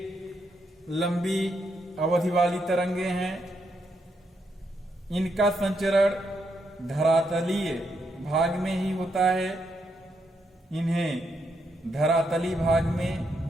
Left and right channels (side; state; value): both; normal; correlation 0.79